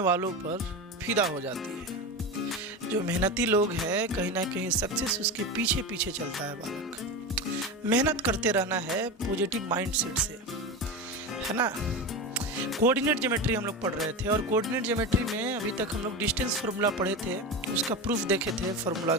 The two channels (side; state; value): both; normal; correlation 0.23